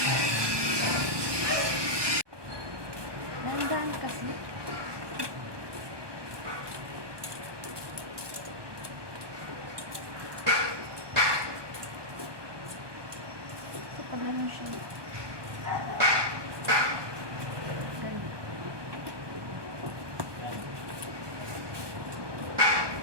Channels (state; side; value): late; left; 1.2 ms